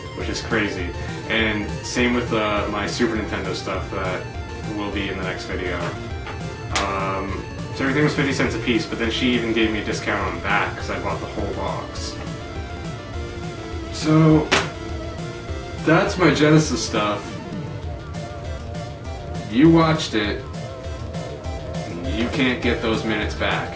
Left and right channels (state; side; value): identical; both; correlation 1.00